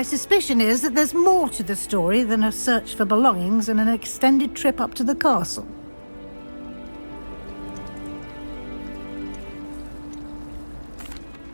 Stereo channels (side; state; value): both; inverted; correlation -1.00